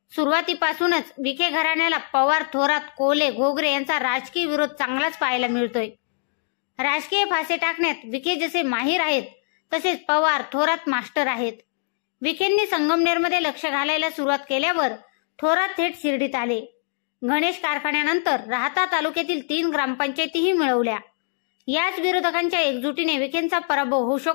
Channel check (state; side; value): silent; right; digital silence